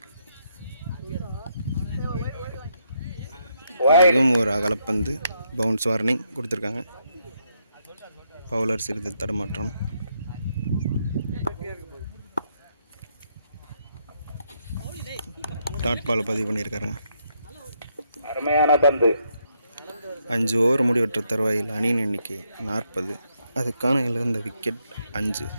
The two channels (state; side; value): inverted; both; correlation -0.77